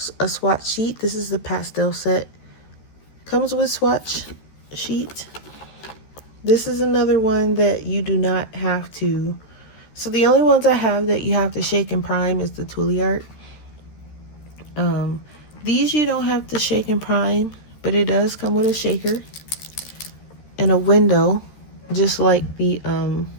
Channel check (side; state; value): right; late; 13 ms